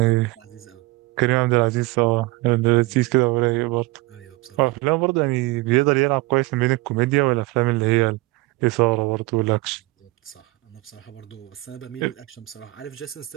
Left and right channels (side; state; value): left; quieter; 21.9 dB